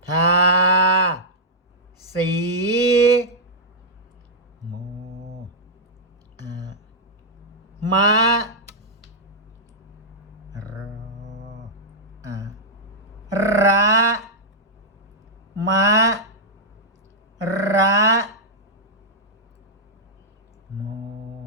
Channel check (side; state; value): both; normal; correlation -0.07